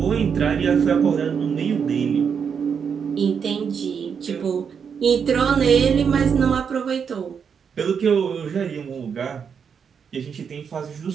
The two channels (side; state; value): left; quieter; 6.8 dB